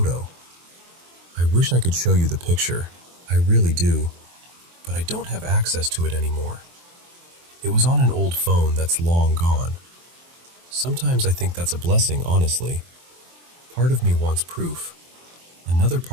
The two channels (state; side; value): late; left; 23 ms